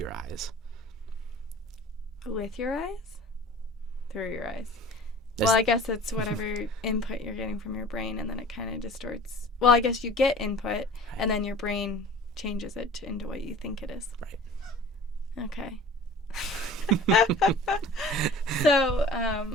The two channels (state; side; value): normal; both; correlation 0.44